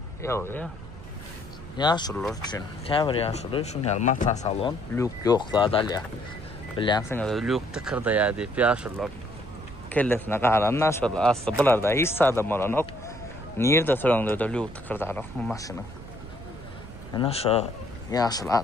Yok ya. Yaşlılar için. Kevr yaşlılar için mata salon. Lük yok da dalya. Biliyorsunuz lük tıkırda ya deyip yaşlılar. Kellesine qalanlar şöyle. Aslında bunlarda hiç adam olan yok. Nerede sorunlu da lük tıkırda yok bu maşının. Yani şu yaşlı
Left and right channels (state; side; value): noise; right; rumble, 15 dB below the sound